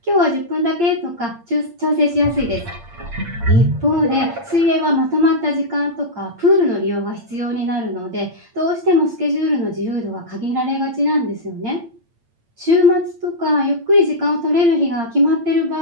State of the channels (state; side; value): late; left; 8.7 ms